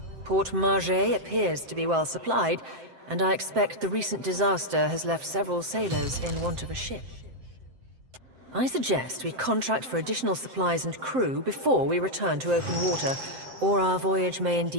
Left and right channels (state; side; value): late; left; 7.7 ms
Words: Port Margé appears to be well supplied, and I expect the recent disaster has left several sailors in want of a ship. I suggest we contract for additional supplies and crew before we return to open water, or our voyage may